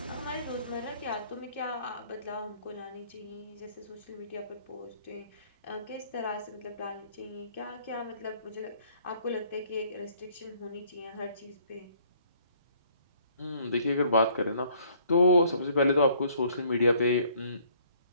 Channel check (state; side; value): inverted; both; correlation -0.61